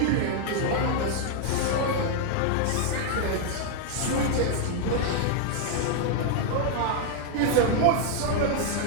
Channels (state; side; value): different; both; correlation 0.00